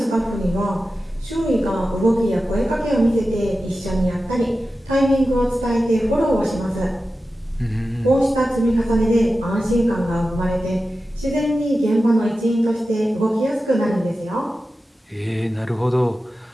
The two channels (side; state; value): both; normal; correlation 0.93